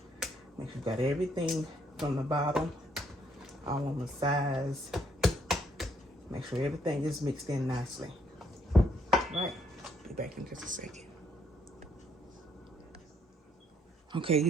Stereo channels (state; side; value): normal; both; correlation 0.70